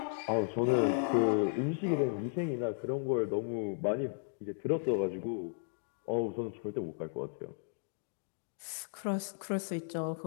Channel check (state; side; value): silent; right; digital silence